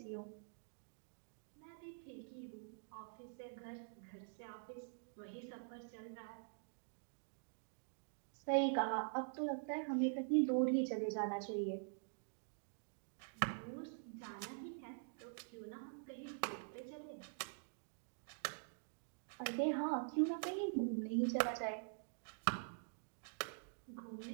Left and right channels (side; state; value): left; silent; digital silence